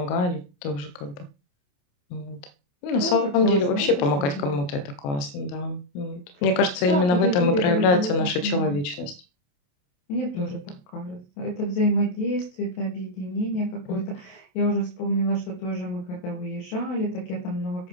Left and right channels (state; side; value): late; right; 28 ms